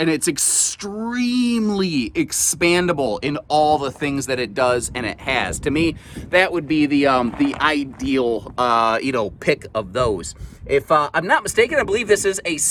it's extremely expandable in all the things that it does and it has. To me, that would be the ideal pick of those. If I'm not mistaken, I believe this is a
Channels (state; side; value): identical; both; correlation 1.00